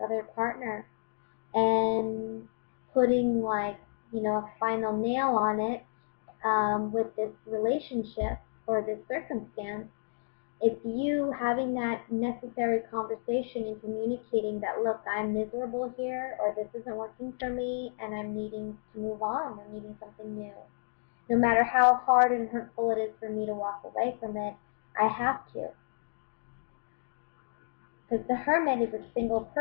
other partner, and putting a final nail on it with this relationship or this circumstance. It's you having that necessary conversation and communicating that, look, I'm miserable here, or this isn't working for me, and I'm needing to move on. I'm needing something new. No matter how hard and hurtful it is for me to walk away from it, I have to. Because the Hermit is a single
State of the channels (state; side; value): silent; right; digital silence